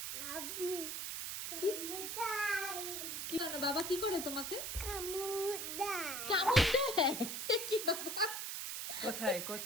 আবু কি? কামুদাই কি না, বাবা কি করে তোমাকে? কামুদাই কামড় দেয়? কি বাবা? কোথায়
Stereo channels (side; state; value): right; noise; hiss, 4 dB below the sound